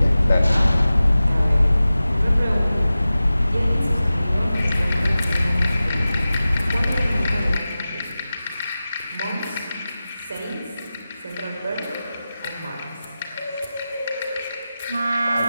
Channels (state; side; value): inverted; both; correlation -0.95